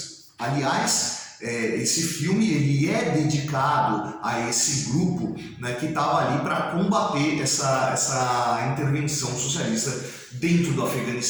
Aliás, esse filme ele é dedicado a esse grupo, né, que estava ali para combater essa intervenção socialista dentro do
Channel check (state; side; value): identical; both; correlation 1.00